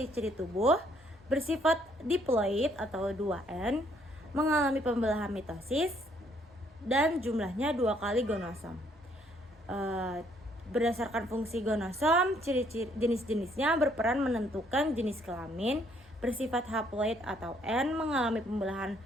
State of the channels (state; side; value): normal; both; correlation 0.67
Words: tubuh, bersifat diploid atau 2N, mengalami pembelahan mitosis, dan jumlahnya 2 kali gonosom. Berdasarkan fungsi gonosom, ciri-ciri jenis-jenisnya berperan menentukan jenis kelamin, bersifat haploid atau N, mengalami pembelahan